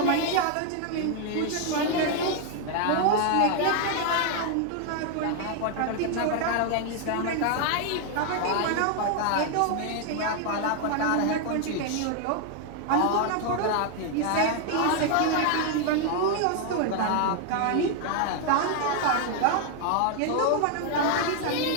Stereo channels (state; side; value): different; both; correlation 0.00